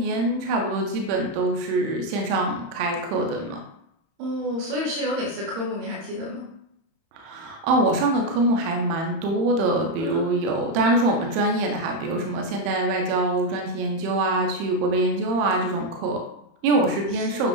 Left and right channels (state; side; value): late; left; 30 ms